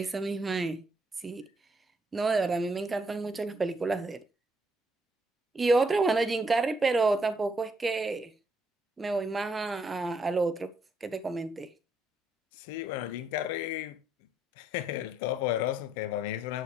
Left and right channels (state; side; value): normal; both; correlation 0.73